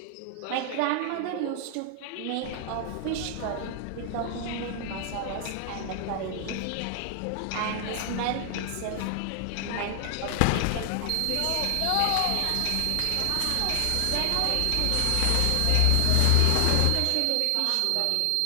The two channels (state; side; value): different; both; correlation 0.00